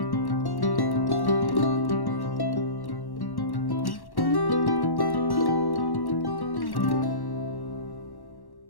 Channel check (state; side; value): late; right; 1.1 ms